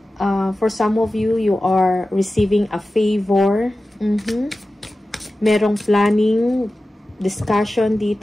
For some of you, you are receiving a favor. Merong planning, discussion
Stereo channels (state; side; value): normal; both; correlation 0.95